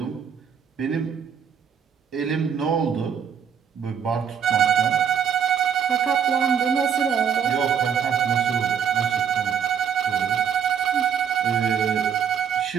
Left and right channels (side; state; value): left; quieter; 7.8 dB